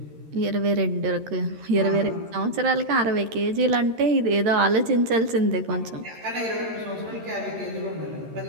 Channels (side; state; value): left; late; 13 ms